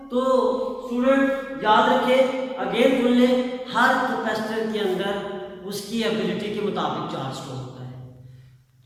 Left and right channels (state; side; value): identical; both; correlation 1.00